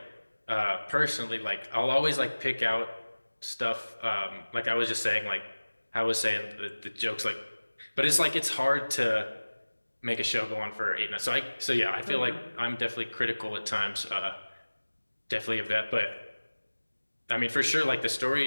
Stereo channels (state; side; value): inverted; both; correlation -1.00